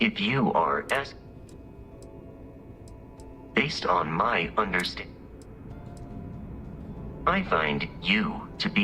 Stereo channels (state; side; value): identical; both; correlation 1.00